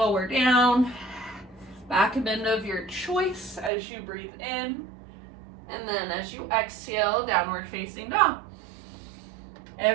down, back bend of your choice as you breathe in, and then as you exhale, downward facing dog.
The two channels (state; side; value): drops out; left; at 3.7 s